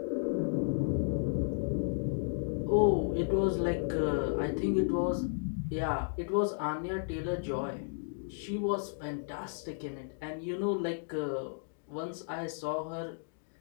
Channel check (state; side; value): silent; right; digital silence